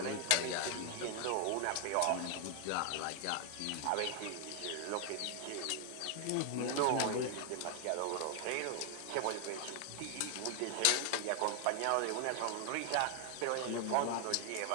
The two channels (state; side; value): different; both; correlation 0.00